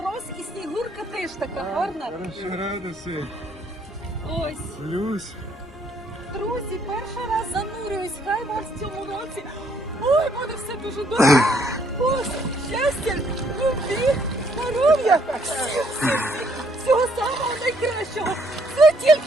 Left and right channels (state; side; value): normal; both; correlation 0.67